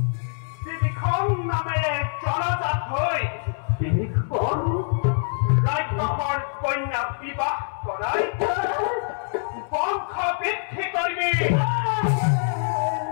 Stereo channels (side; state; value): right; silent; 62 dB below the other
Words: ত্ৰিবিক্ৰম নামেৰে জনজাত হৈ ৰাক্ষসৰ কন্যা বিবাহ কৰাই বংশ বৃদ্ধি কৰিবি